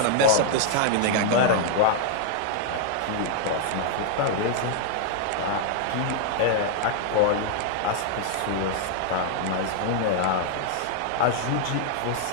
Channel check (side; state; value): both; different; correlation -0.01